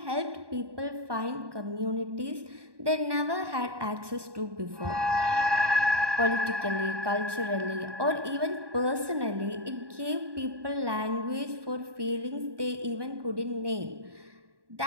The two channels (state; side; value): late; left; 1.2 ms